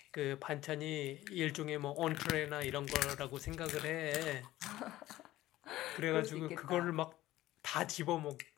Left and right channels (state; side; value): quieter; right; 15.8 dB